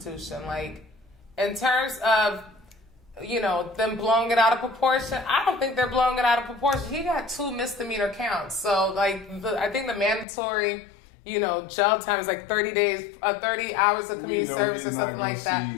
In terms of, them blowing it out of proportion, I don't think they're blowing it out of proportion. He got 2 misdemeanor counts. So, I think the mandatory, jail time is 30 days, 30 hours of community service or something like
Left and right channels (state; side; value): drops out; right; at 10.2 s